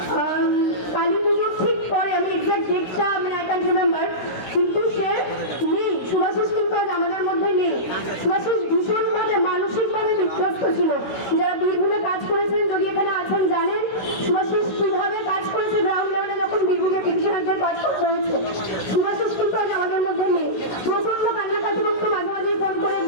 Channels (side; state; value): right; late; 16 ms